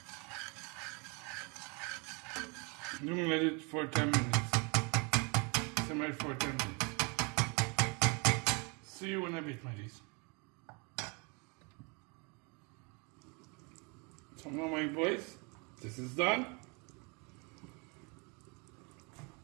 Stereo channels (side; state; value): left; quieter; 31.9 dB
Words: I'm gonna let it for 10 minutes. Simmer for 10 minutes. See you in a bit, my dears. So now, my boys, this is done.